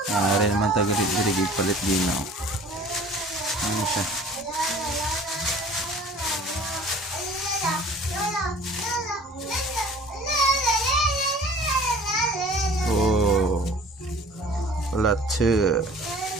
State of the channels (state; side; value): normal; both; correlation 0.47